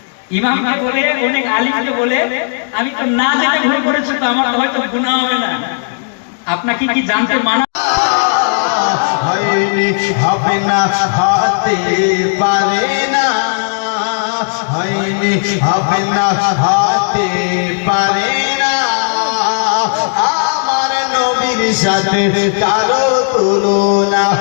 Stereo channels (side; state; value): right; silent; digital silence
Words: ইমামকে বলে অনেক আলিমকে বলে আমি তো না জেনে ভুল করেছি তো আমার তো হয়তো গুনাহ হবে না। আপনাকে কি জানতে মানা হয়নি হবে না হতে পারে না, হয়নি হবে না হতে পারে না। আমার নবীর সাথে কারো তুলনা,